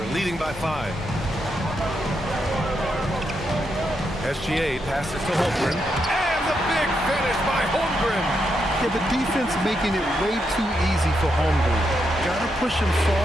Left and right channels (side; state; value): both; normal; correlation 0.82